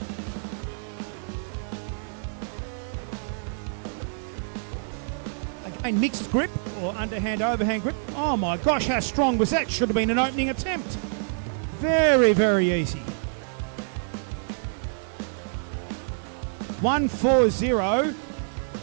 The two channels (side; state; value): left; silent; digital silence